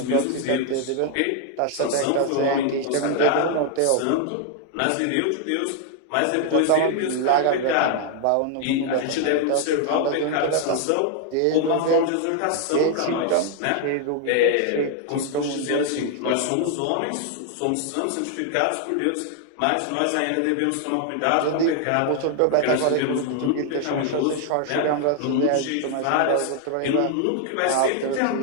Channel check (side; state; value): both; different; correlation 0.00